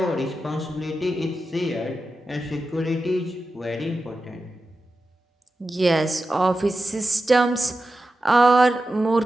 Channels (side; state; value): both; normal; correlation 0.92